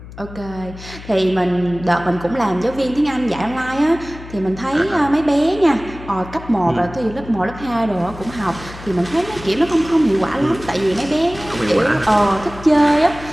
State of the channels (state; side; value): noise; left; hum, 15 dB below the sound